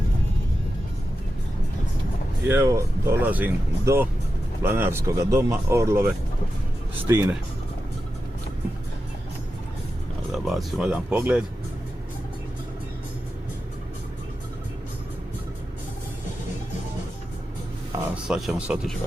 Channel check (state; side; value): normal; both; correlation 0.90